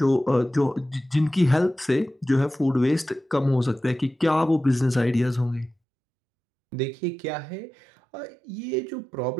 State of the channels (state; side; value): drops out; left; at 5.8 s